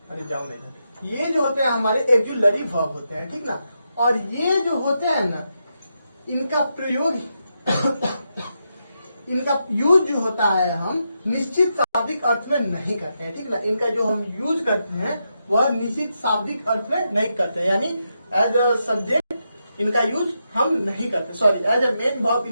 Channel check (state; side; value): inverted; both; correlation -0.84